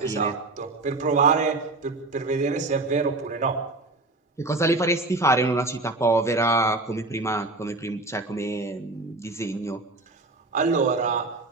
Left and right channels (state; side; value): quieter; left; 3.1 dB